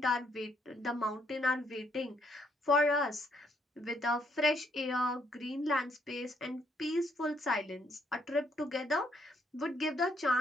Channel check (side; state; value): both; normal; correlation 0.72